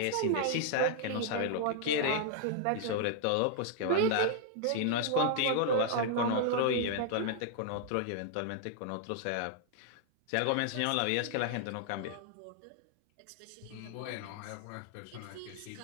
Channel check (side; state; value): both; different; correlation -0.01